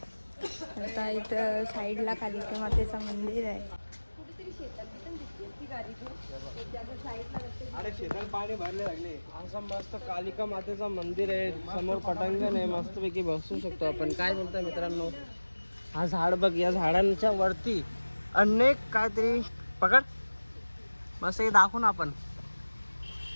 आता इथं साईडला कालिका मातेचं मंदिर आहे. अरे शेतात पाणी भरले लागले. असं मस्त कालिका मातेचं मंदिर आहे, समोर पटांगण आहे, मस्तपैकी बसू शकतो आपण. काय बोलतोय मित्रांनो, हा झाड बघ, या झाडांच्या वरती अनेक काहीतरी पकड मस्त हे दाखवू ना आपण.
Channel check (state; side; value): inverted; both; correlation -1.00